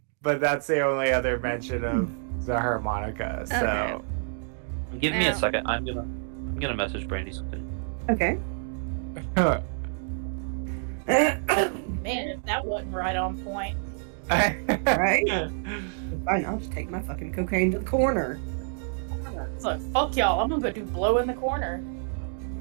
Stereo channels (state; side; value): silent; left; 60 dB below the other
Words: But that's the only other mention of the harmonica, so... Okay. Give me a Well- second. I'm gonna message Brandy something. Okay. Man, if that wasn't right on point. Right? Fine, I'll just take my fucking cocaine to the corner. It's like, fuck y'all, I'm gonna go do blow in the corner.